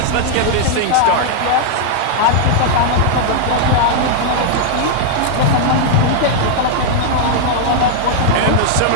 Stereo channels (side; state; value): both; different; correlation -0.01